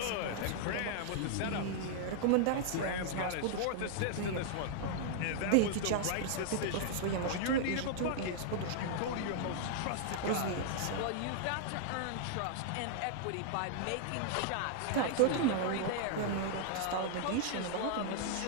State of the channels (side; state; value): both; different; correlation -0.01